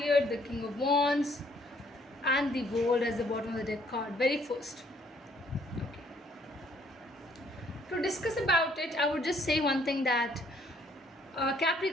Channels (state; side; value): normal; both; correlation 0.65